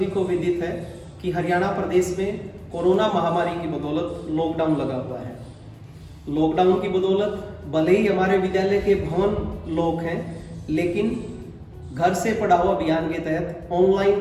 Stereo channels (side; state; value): both; identical; correlation 1.00